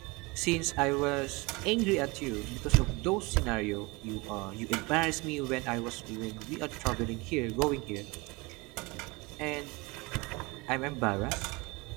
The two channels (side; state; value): left; quieter; 25.4 dB